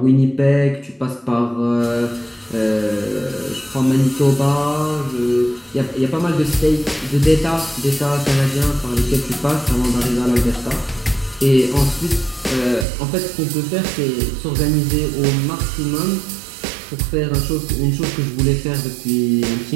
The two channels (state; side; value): drops out; left; at 12.9 s